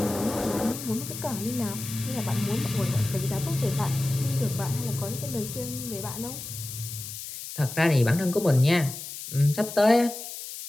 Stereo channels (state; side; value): noise; left; hiss, 9 dB below the sound